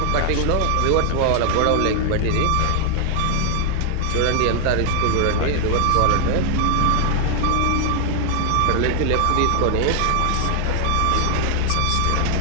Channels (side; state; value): both; different; correlation 0.00